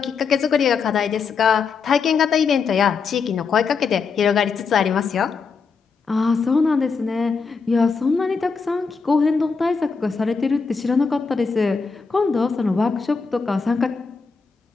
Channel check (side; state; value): right; quieter; 5.2 dB